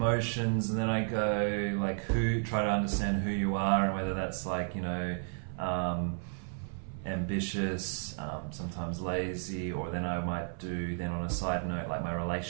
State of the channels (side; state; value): left; silent; 56 dB below the other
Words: and then I go like try to understand who you are, and whether that's like, ambitious, sometimes lazy, or then I might do then on a side note like my